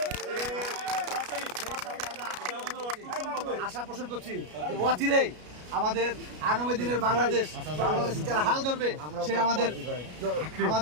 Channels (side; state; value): left; late; 33 ms